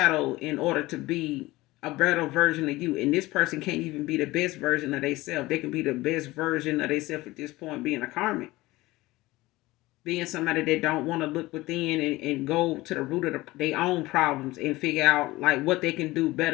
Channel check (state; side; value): quieter; right; 19.3 dB